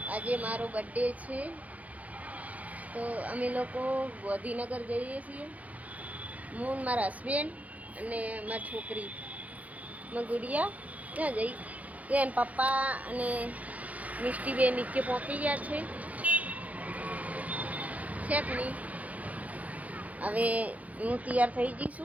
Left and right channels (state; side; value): late; left; 0.071 ms